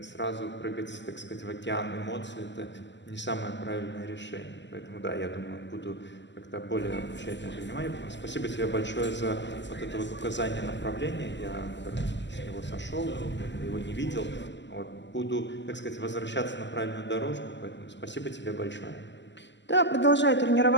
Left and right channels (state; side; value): late; right; 0.52 ms